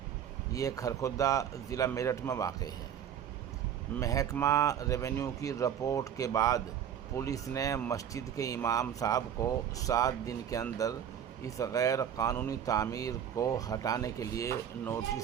یہ کھرکھودا ضلع میرٹھ میں واقع ہے۔ محکمہ ریونیو کی رپورٹ کے بعد پولیس نے مسجد کے امام صاحب کو 7 دن کے اندر اس غیر قانونی تعمیر کو ہٹانے کے لیے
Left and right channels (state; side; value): quieter; left; 9.2 dB